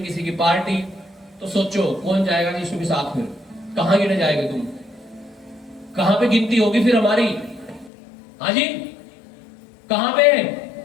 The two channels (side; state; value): right; drops out; at 7.9 s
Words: किसी की पार्टी। तो सोचो कौन जाएगा यीशु के साथ? फिर कहां गिने जाएंगे तुम? कहां पे गिनती होगी फिर हमारी? हाँ जी, कहां पे?